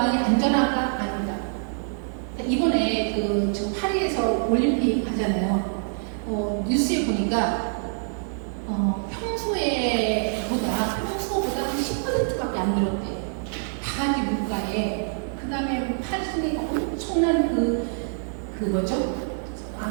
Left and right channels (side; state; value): left; silent; 60 dB below the other